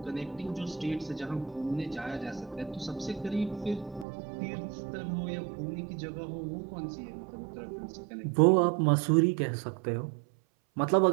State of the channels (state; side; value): drops out; left; at 4.0 s